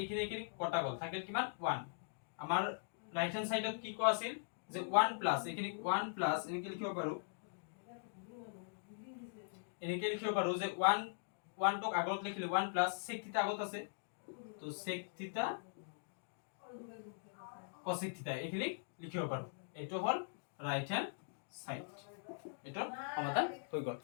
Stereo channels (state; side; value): silent; right; digital silence